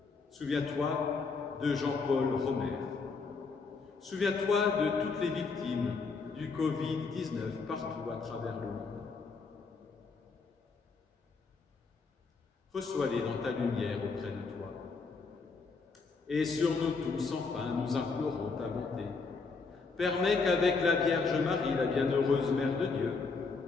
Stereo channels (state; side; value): quieter; right; 4.5 dB